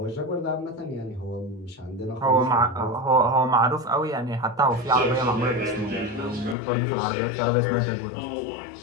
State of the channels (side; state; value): right; drops out; at 6.6 s